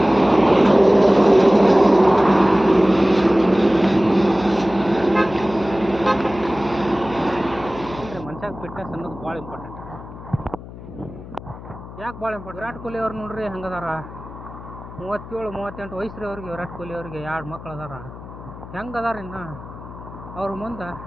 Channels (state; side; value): noise; left; hum, 15 dB below the sound